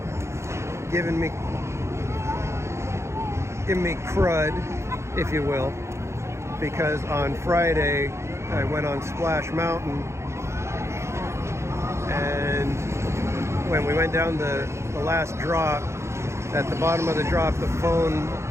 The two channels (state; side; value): late; left; 0.13 ms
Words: giving me crud, if you will, because on Friday I went on Splash Mountain, and when we went down the last drop, at the bottom of the drop, the phone